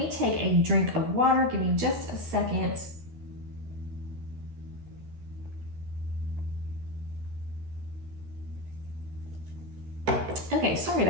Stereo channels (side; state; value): left; late; 13 ms